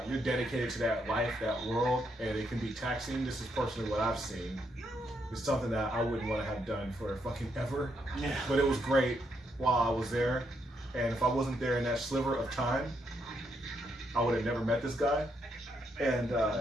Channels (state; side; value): normal; both; correlation 0.77